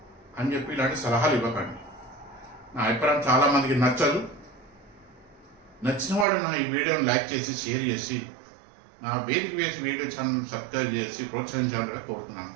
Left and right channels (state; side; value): drops out; left; at 6.2 s